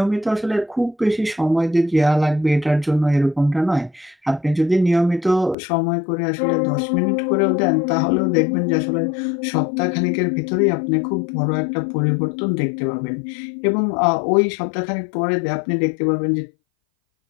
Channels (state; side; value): drops out; right; at 5.6 s